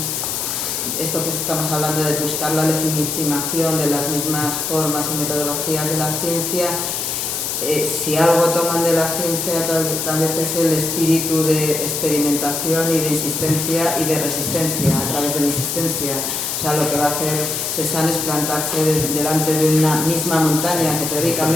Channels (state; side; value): noise; left; hiss, 2 dB below the sound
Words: esto que estamos hablando de buscar la legitimación de las mismas formas y metodologías de la ciencia, si algo toman de la ciencia tal vez es el espíritu de experimentación y de insistencia y de resistencia a través de la insistencia. O sea, lo que va a hacer Cézanne es plantarse delante de una misma montaña que